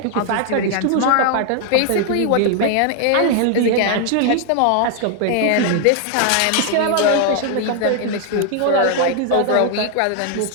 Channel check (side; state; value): both; different; correlation 0.00